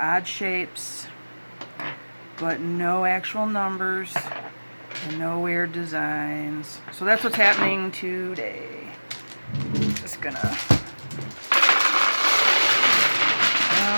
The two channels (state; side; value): inverted; both; correlation -1.00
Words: shapes, but no actual numbers and no weird designs. So that's what's happening today. Just gonna